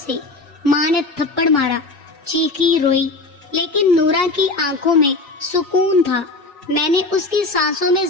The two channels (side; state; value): right; quieter; 3.3 dB